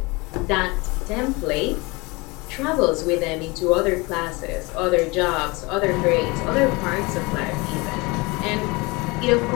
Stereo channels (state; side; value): quieter; right; 25.4 dB